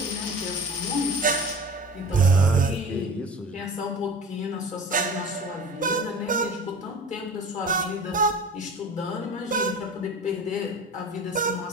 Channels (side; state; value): both; normal; correlation 0.36